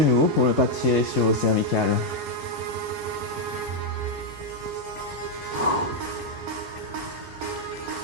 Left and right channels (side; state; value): both; normal; correlation -0.01